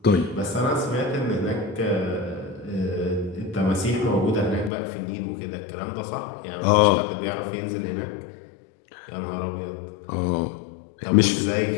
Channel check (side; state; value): right; drops out; at 4.7 s